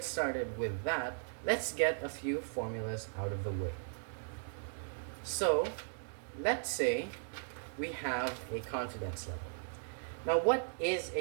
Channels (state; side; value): silent; left; digital silence